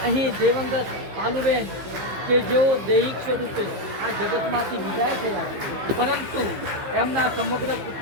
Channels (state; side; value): late; left; 15 ms